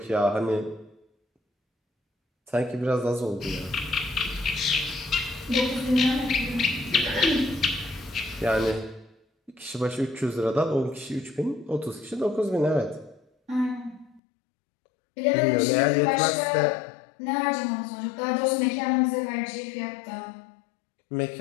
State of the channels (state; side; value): drops out; right; at 14.2 s